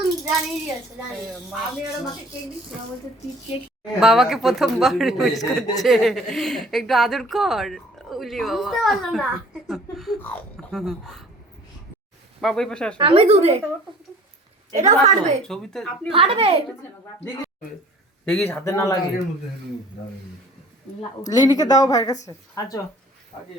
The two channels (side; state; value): both; normal; correlation 0.50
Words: জানিয়ে দিয়েছে জানি আমি আর মাকে কেক দিচ্ছি বলতে তুই কেক বাবাকে প্রথমবার উইশ করছে, একটু আদর কর। উলি বাবা, বুঝতে পারলো না বাবা এই পাশে আসো। আমি দূরে এটা ফাটবে ছবিতে ফাটবে দেখিস হাতে না লাগে। লিনিকে দাও ভাইয়ের কাছে। আচ্ছা